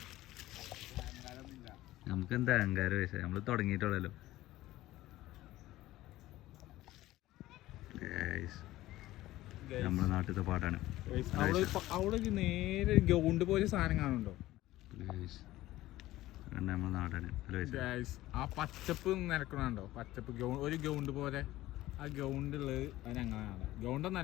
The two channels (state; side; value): quieter; right; 16.3 dB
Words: നമുക്ക് എന്താ അഹങ്കാരം പൈസ. നമ്മള് തുടങ്ങിയിട്ടുള്ളല്ലോ. നമ്മുടെ നാട്ടിലത്തെ പാട്ടാണ്. അവിടെ നേരെ ഗ്രൗണ്ട് പോലെ സാധനം കാണുന്നുണ്ടോ? നമ്മുടെ നാടാണ്. ആ പച്ചപ്പ് നിരക്കണുണ്ടോ? പച്ചപ്പ് ഒരു ഗ്രൗണ്ട് പോലെ. ആ ഗ്രൗണ്ടുള്ളത് അത് ഞങ്ങളാണ്.